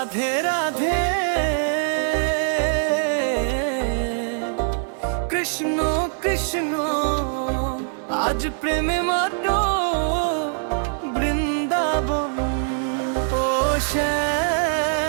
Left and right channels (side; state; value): left; silent; 60 dB below the other